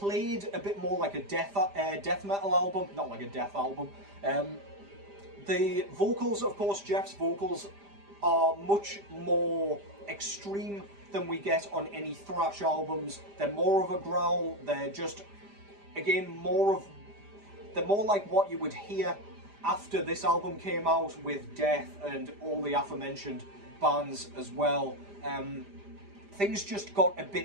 a bit more like a death metal album, not like a death album. The vocals, of course, Jeff's vocals are much more extreme than we get on any thrash albums. They're more of a growl. They're just, again, they're more like what you would hear after this album came out with Death and all the aforementioned bands as well. Things just got a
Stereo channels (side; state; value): left; late; 5.0 ms